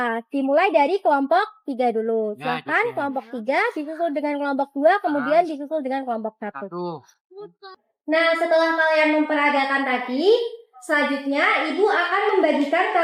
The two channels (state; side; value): identical; both; correlation 1.00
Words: Dimulai dari kelompok 3 dulu. Ya, Silakan gitu ya. kelompok 3 disusul dengan kelompok 2, kemudian disusul dengan kelompok 1. Nah, setelah kalian memperagakan tadi, selanjutnya Ibu akan membagikan